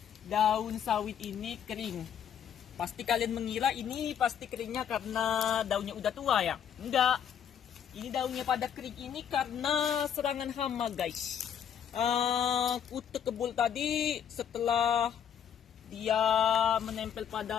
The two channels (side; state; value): right; quieter; 8.6 dB